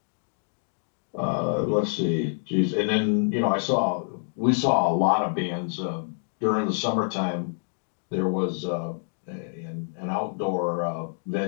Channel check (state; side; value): silent; right; digital silence